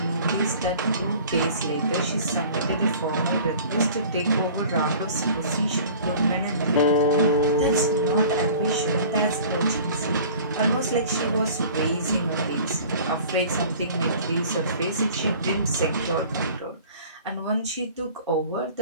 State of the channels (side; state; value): both; inverted; correlation -0.46